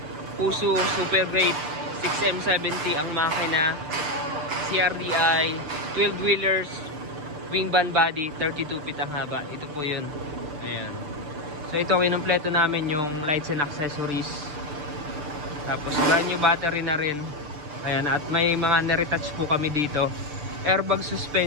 Puso Super Great 6M70 ang makina. CRDI 12 wheelers, wing band body, 32 feet ang haba. Ito po yun. Ayan. So ito kinumpleto namin yung lights and accessories. Tapos brand new battery na rin. Ayan, at may mga niretouch po kami dito. Airbag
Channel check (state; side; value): late; left; 6.8 ms